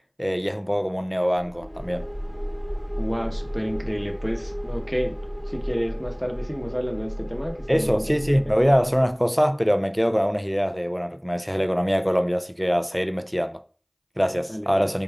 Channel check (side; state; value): both; identical; correlation 1.00